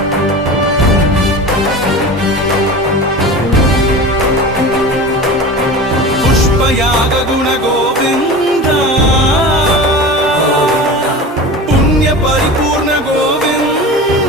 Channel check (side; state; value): both; normal; correlation 0.32